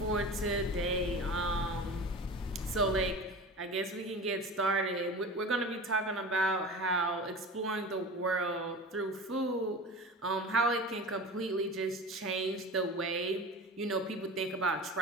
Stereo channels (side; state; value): both; normal; correlation 0.33